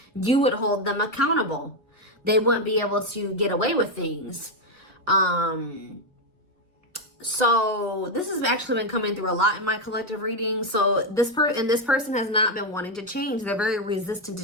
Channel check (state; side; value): normal; both; correlation 0.05